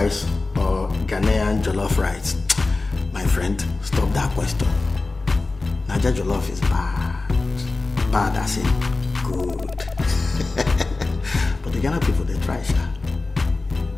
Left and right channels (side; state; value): right; quieter; 3.5 dB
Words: or Ghanaian jollof rice? My friend, stop that question. Nigeria jollof is bad. Bad as in good. But the Ghana people, they try, sha.